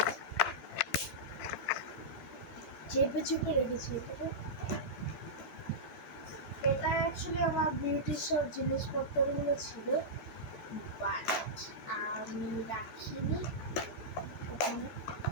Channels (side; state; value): right; late; 14 ms